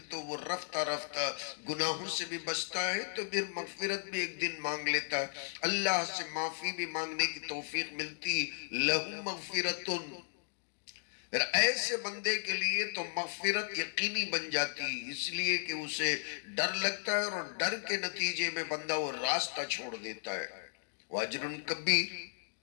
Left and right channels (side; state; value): right; silent; digital silence